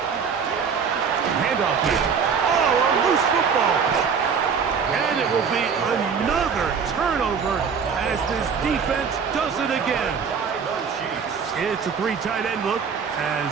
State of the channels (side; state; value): left; quieter; 6.3 dB